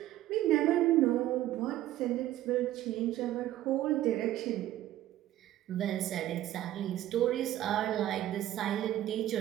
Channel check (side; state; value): left; quieter; 13.7 dB